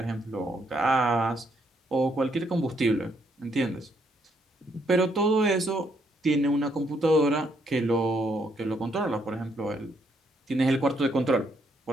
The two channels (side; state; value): both; normal; correlation 0.73